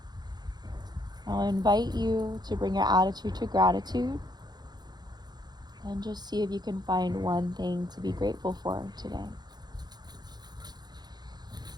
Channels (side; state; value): left; late; 0.20 ms